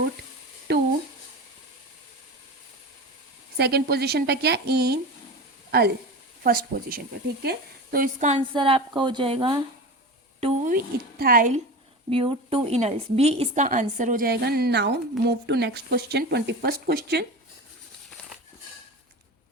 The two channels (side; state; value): both; normal; correlation 0.29